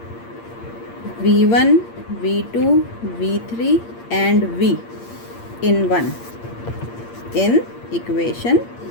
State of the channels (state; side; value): late; right; 8.6 ms